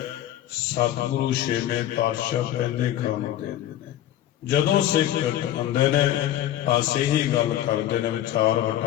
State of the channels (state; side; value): quieter; right; 12.7 dB